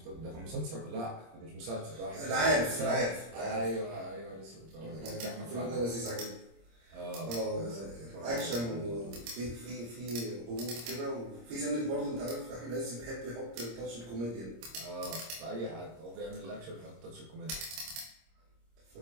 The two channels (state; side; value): late; left; 26 ms